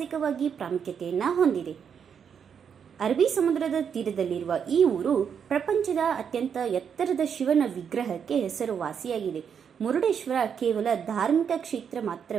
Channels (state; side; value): quieter; left; 7.4 dB